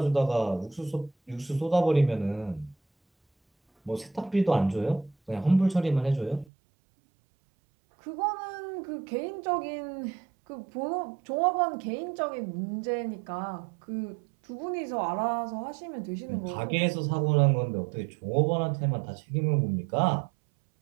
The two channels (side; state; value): left; drops out; at 6.5 s